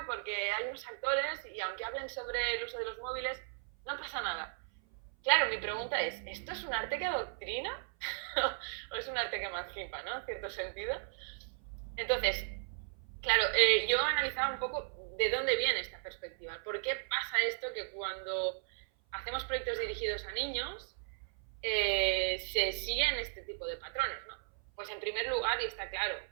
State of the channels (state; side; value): silent; left; 54 dB below the other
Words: porque hay unos actores, y aunque hablen sobre el uso de los móviles, no pasa nada. Claro, mi pregunta es, ¿esto es un arte que adoctrina? ¿O es un arte que emancipa, ¿no? En cierto sentido. Entonces, claro, yo analizaba un poco de dónde viene esta perspectiva. ¿Por qué pasa esto que cuando hacemos proyectos dirigidos a niños se siguen este tipo de patrones, ¿no? Pues en primer lugar, y está claro,